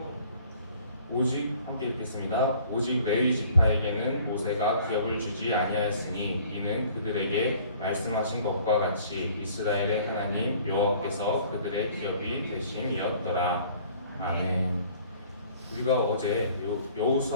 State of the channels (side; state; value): both; inverted; correlation -0.53